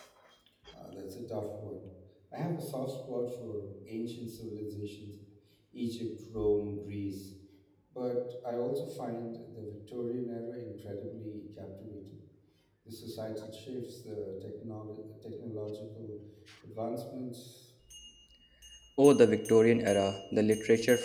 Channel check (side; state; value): both; identical; correlation 1.00